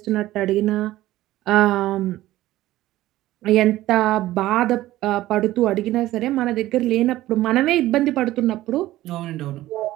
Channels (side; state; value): left; quieter; 15.6 dB